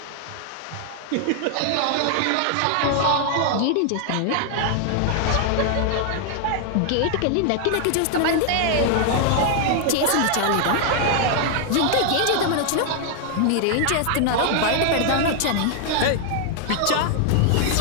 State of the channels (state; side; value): different; both; correlation 0.00